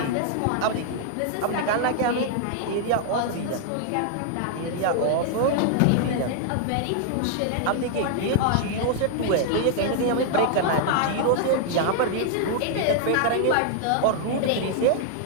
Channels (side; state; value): both; different; correlation -0.01